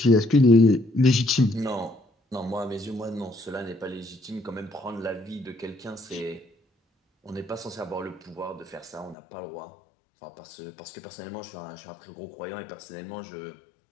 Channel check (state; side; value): drops out; right; at 9.2 s